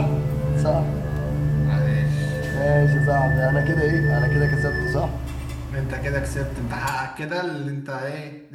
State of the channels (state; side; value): identical; both; correlation 1.00